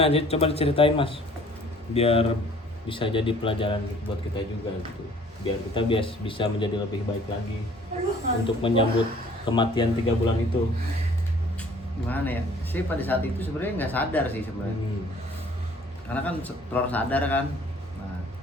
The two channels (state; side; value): normal; both; correlation 0.54